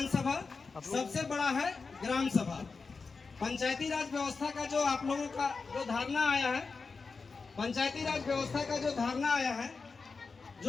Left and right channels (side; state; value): right; quieter; 4.6 dB